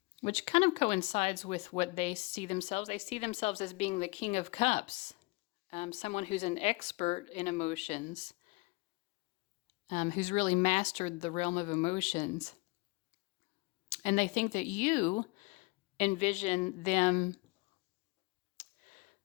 which kind of coincides with what they see themselves. They see themselves as being the King of Cups, someone who's an expert in emotions, who's really mastered the realm of emotions. And they think that you envision them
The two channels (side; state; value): right; quieter; 25.4 dB